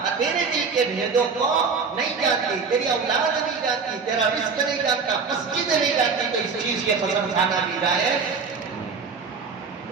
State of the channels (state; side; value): quieter; left; 5.2 dB